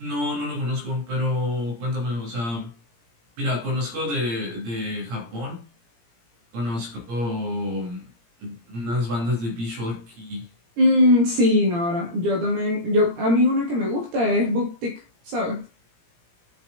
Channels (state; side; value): late; left; 17 ms